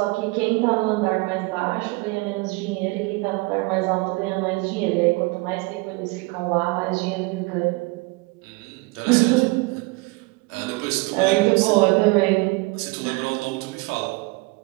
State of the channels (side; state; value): left; quieter; 24.9 dB